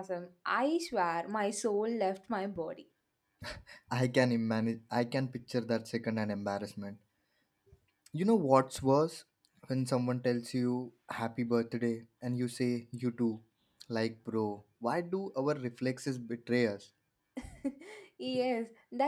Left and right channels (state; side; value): identical; both; correlation 1.00